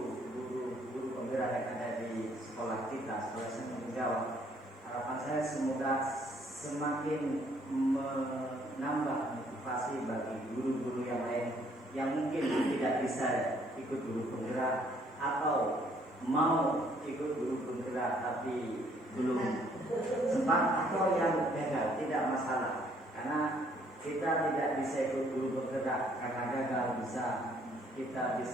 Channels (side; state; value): both; normal; correlation 0.65